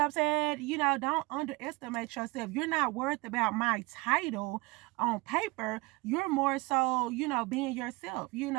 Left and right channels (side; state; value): left; quieter; 24.0 dB